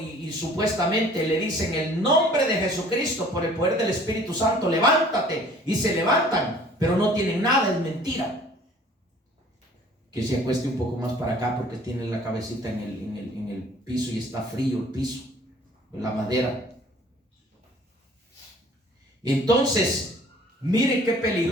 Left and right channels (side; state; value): both; normal; correlation 0.52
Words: supuestamente le dicen en el nombre de Jesucristo, por el poder del Espíritu Santo, levántate, y se levantan, pero no tienen nada, es mentira. Que se acueste un poco más para acá porque tiene la cabecita en el piso y está frío el piso, la madera. Entonces, miren qué